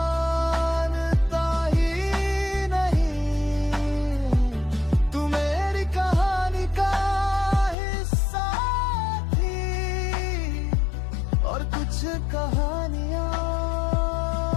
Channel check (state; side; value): drops out; right; at 7.8 s